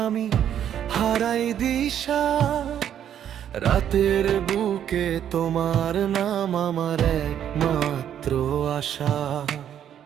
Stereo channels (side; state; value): left; quieter; 9.8 dB